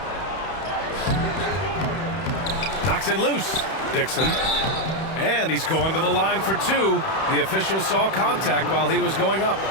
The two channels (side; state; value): right; late; 31 ms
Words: Knocks it loose. Dixon. And he's going to the line for two. The official saw contact while he was going up.